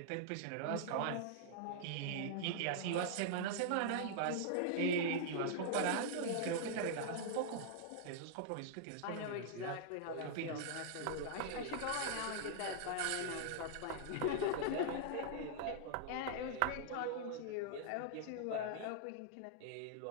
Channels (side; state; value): both; different; correlation -0.01